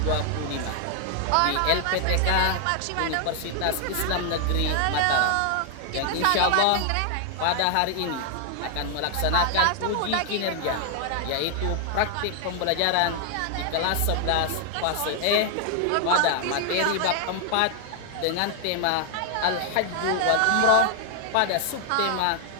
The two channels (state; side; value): different; both; correlation 0.00